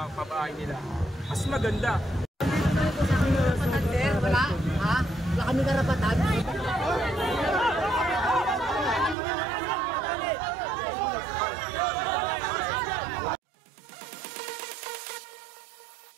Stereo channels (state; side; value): drops out; left; at 9.2 s